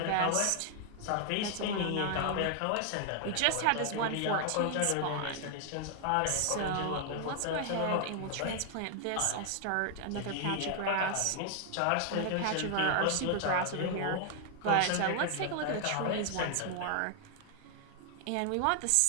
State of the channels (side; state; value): both; different; correlation 0.00